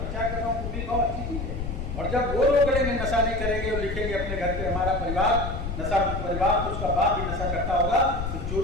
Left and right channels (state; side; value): noise; left; rumble, 4 dB below the sound